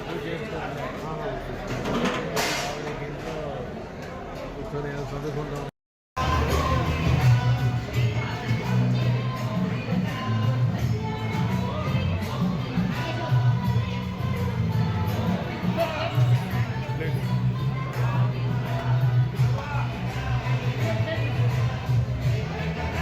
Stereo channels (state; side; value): identical; both; correlation 1.00